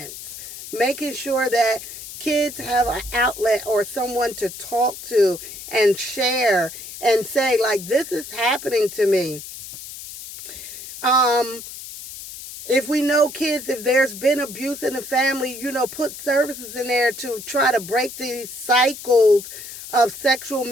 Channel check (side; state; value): left; noise; hiss, 12 dB below the sound